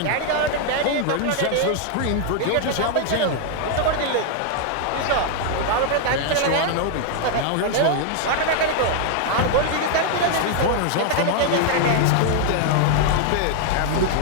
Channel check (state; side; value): different; both; correlation 0.00